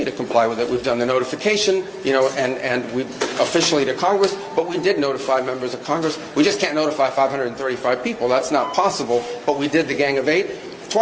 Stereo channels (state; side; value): identical; both; correlation 1.00